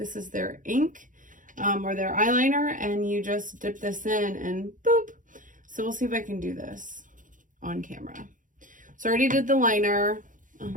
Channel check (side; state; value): left; late; 0.38 ms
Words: is their ink. Or their eyeliner, and you just dip this in and boop. So we'll see if I can do this on camera. So I already did the liner.